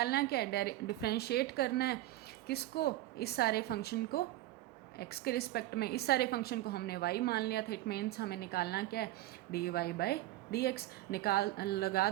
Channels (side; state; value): left; quieter; 15.7 dB